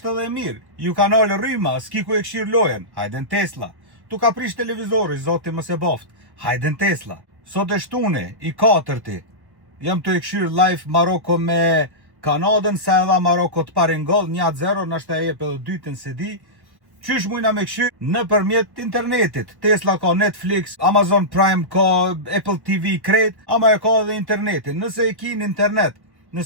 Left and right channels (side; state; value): left; late; 1.2 ms